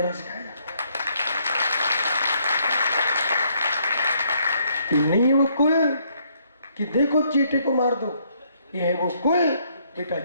सिखाया जाता है। नहीं वो कुल कि देखो चींटे को मार दो, ये है वो कुल बेटा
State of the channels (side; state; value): both; inverted; correlation -0.70